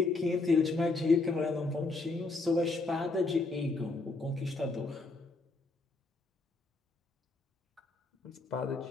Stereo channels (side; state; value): right; quieter; 3.5 dB